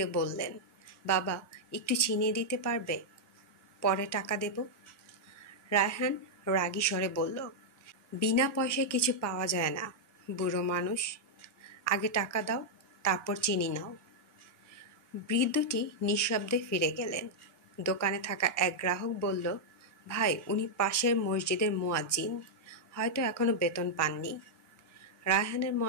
বললেন, বাবা, একটু চিনি দিতে পারবে? পরে টাকা দেব। রায়হান রাগী স্বরে বলল, বিনা পয়সায় কিছু পাওয়া যায় না, বুড়ো মানুষ। আগে টাকা দাও, তারপর চিনি নাও। বৃদ্ধটি নিঃশব্দে ফিরে গেলেন। দোকানে থাকা এক গ্রাহক বলল, ভাই, উনি পাশের মসজিদের মুয়াজ্জিন, হয়তো এখনো বেতন পাননি। রায়হানের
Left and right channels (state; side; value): normal; both; correlation -0.04